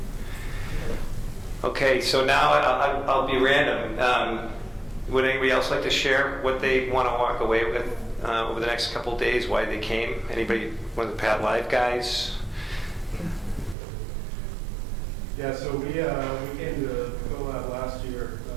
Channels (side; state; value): left; drops out; at 13.8 s